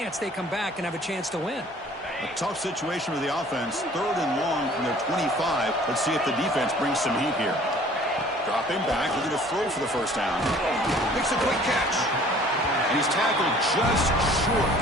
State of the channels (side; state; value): both; normal; correlation 0.52